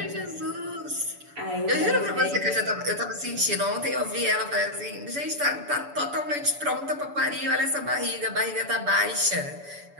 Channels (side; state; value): left; late; 7.0 ms